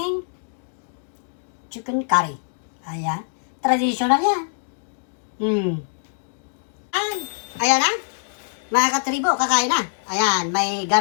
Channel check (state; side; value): silent; right; digital silence